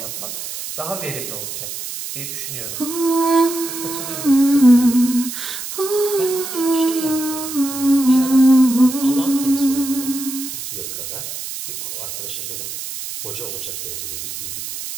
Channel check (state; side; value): noise; right; hiss, 8 dB below the sound